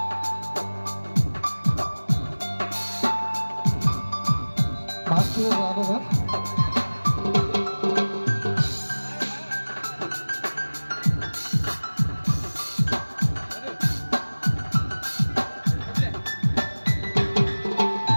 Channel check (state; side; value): inverted; both; correlation -1.00